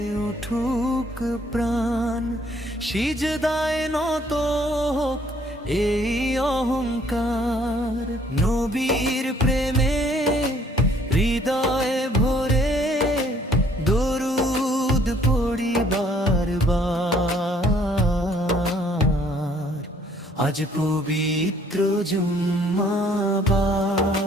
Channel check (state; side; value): normal; both; correlation 0.62